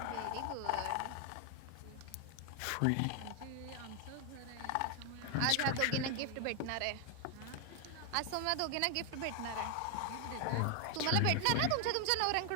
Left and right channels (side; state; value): both; different; correlation 0.01